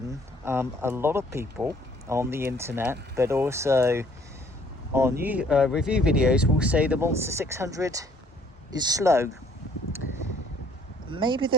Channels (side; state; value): both; normal; correlation 0.61